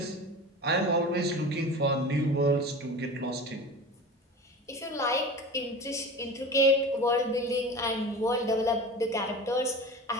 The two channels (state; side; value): normal; both; correlation 0.33